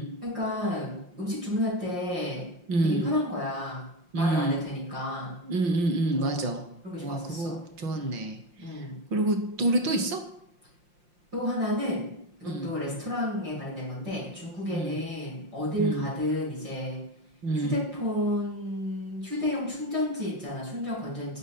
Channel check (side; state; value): left; late; 5.7 ms